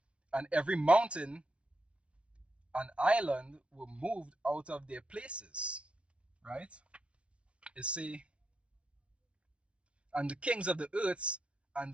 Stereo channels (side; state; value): left; late; 0.060 ms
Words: and every mountain and island were moved out of their places. Right? It say, and the kings of the earth, and